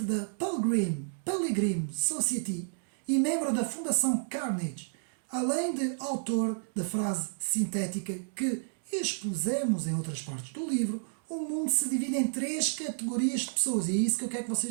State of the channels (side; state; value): left; silent; digital silence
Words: da Pilgrim Society e membro da Fundação Carnegie, além de autor da frase sintética que expusemos em outras partes do livro: o mundo se divide em 3 categorias de pessoas, e é isso que eu quero que